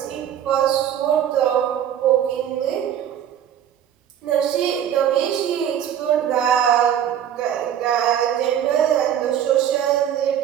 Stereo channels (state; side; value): quieter; left; 9.9 dB